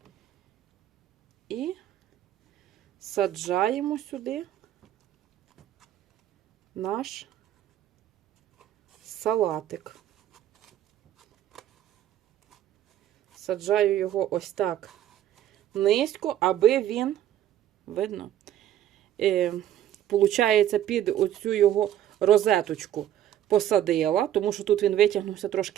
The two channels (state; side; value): quieter; left; 11.7 dB